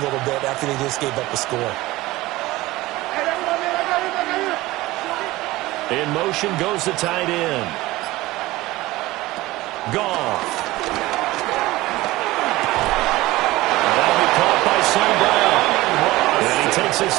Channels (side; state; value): left; quieter; 18.7 dB